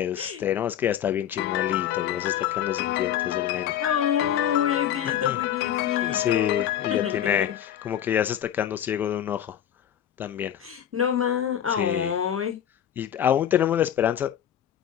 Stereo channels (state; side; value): quieter; right; 10.2 dB